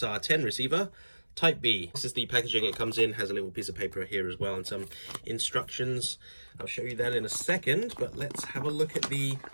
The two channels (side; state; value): both; inverted; correlation -1.00